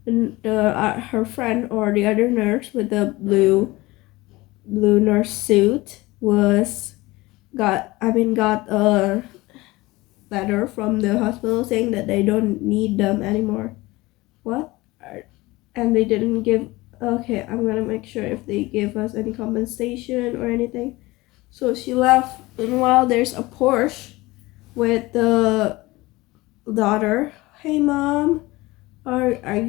her friend or the other nurse with the blue nurse suit got a letter from the hospital saying that they don't need them anymore. What? And they didn't give. Okay, I'm gonna make sure if they give us any compensation or anything. So she left. Meanwhile, there's a Porsche with the daughter. Hey mom, are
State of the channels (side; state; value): right; quieter; 20.6 dB